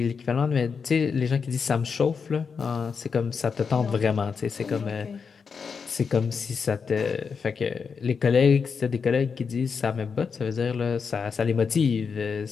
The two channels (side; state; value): right; quieter; 5.8 dB